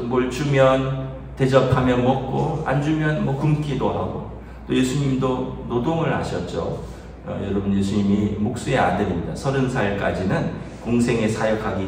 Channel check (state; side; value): identical; both; correlation 1.00